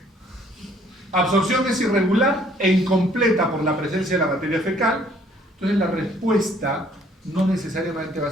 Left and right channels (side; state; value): both; normal; correlation 0.61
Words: Absorción es irregular e incompleta por la presencia de la materia fecal. Entonces la respuesta no necesariamente va a